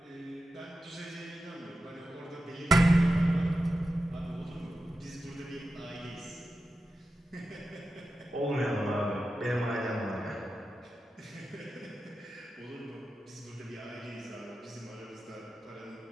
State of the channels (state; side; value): normal; both; correlation 0.91